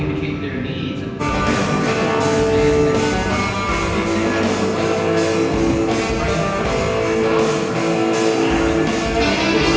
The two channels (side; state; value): both; identical; correlation 1.00